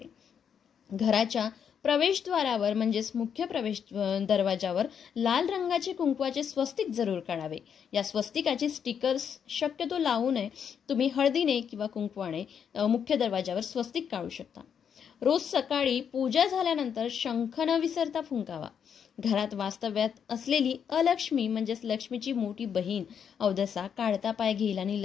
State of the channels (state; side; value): quieter; right; 7.7 dB